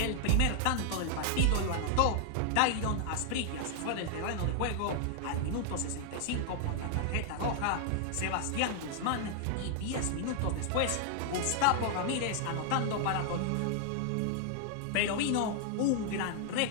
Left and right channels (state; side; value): different; both; correlation 0.00